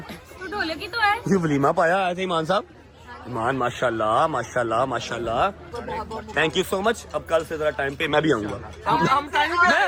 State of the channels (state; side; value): identical; both; correlation 1.00